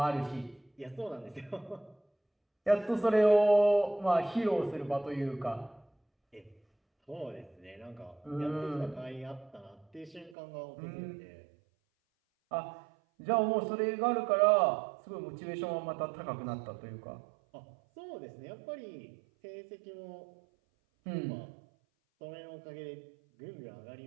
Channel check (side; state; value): left; drops out; at 10.4 s